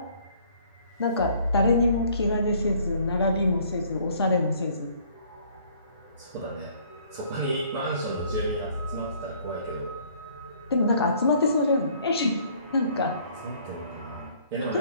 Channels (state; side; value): inverted; both; correlation -0.59